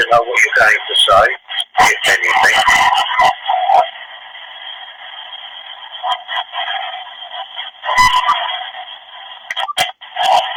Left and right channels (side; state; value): both; identical; correlation 1.00